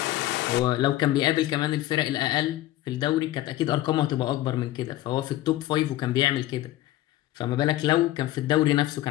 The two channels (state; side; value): quieter; right; 15.2 dB